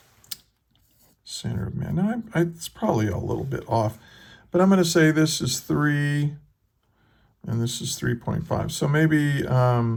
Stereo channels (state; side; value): identical; both; correlation 1.00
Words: center of mass. Now, it's probably a little bit off, but I'm going to say this is 3, and this is 3.5. So maybe,